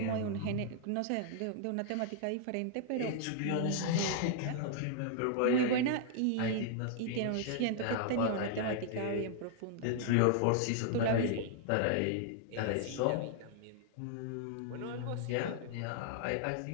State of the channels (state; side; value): different; both; correlation -0.01